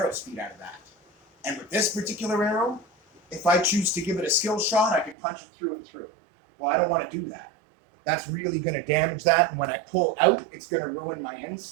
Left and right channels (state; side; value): drops out; left; at 5.2 s